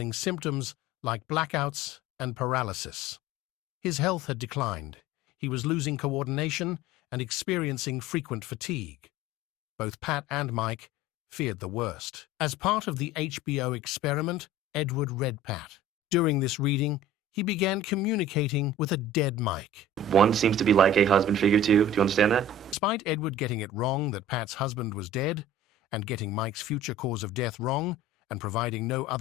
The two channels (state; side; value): normal; both; correlation 0.41